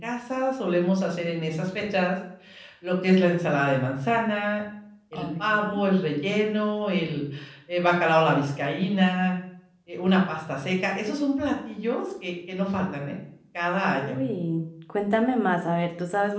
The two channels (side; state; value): both; identical; correlation 1.00